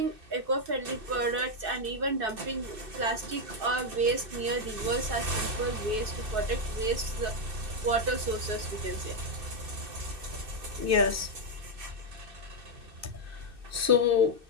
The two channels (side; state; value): left; late; 2.6 ms